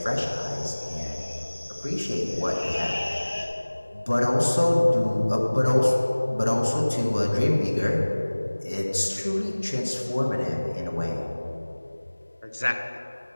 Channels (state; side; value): inverted; both; correlation -1.00